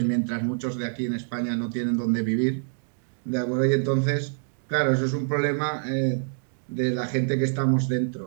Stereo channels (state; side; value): silent; left; digital silence